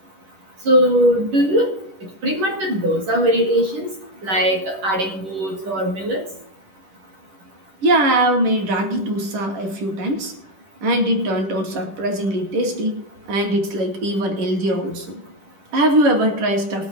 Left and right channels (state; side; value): late; left; 10 ms